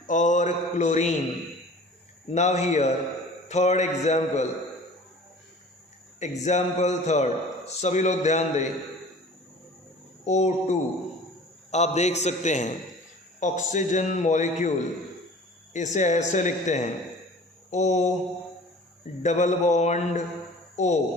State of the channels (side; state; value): both; normal; correlation 0.44